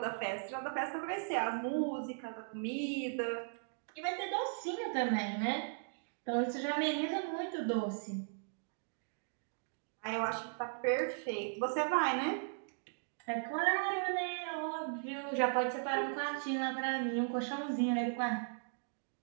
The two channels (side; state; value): left; silent; digital silence